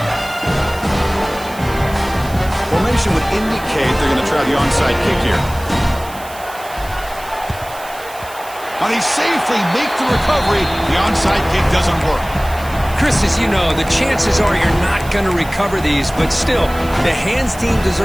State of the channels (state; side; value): noise; right; hiss, 18 dB below the sound